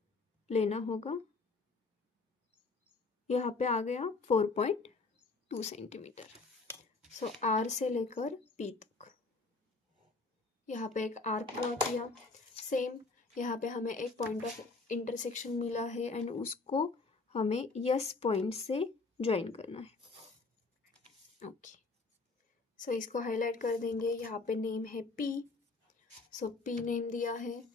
लेना होगा। यहाँ पे आ गया 4.2 सेंटीमीटर। सो R से लेकर P तक यहाँ पे एक आर्क ड्रॉ किया। सेम यहाँ पे हमें एक पॉइंट ऑफ इंटरसेक्शन मिला है एंड उसको हमें यस पॉइंट से ज्वाइन करना है। ओके, सो इसको हाईलाइट कर देंगे। यहाँ पे नेम है P, सो P नेम दिया है।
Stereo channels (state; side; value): quieter; right; 3.8 dB